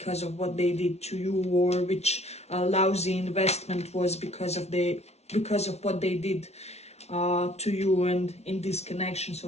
of what they did to you, or which lousy investment was because of what they did to you and in this connection.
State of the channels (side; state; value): right; late; 0.31 ms